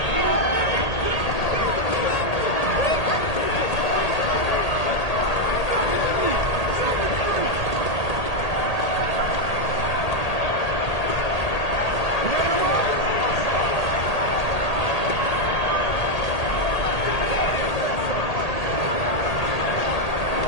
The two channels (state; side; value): late; right; 1.8 ms